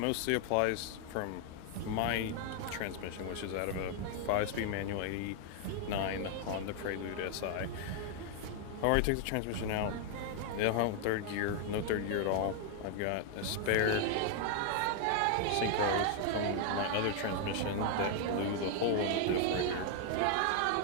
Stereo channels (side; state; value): both; different; correlation 0.00